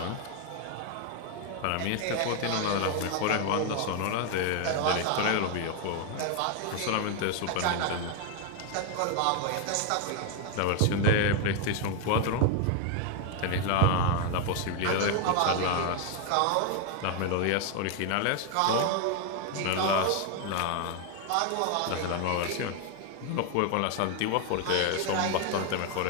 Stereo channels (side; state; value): both; different; correlation 0.01